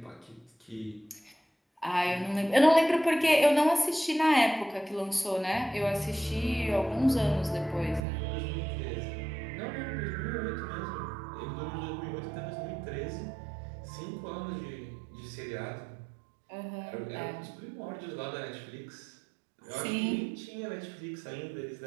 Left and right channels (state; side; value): drops out; left; at 8.0 s